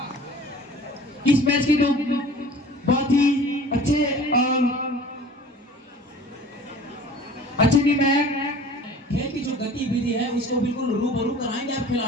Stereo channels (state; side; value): normal; both; correlation 0.45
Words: इस मैच की जो बहुत ही अच्छे मैच खेल की जो गतिविधि है उसको बिल्कुल रूबरू कराएंगे आप